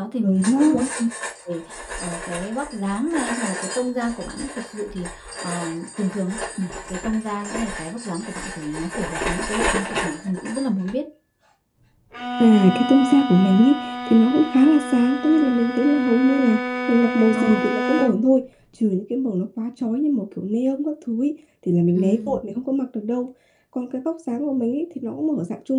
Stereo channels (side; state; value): both; identical; correlation 1.00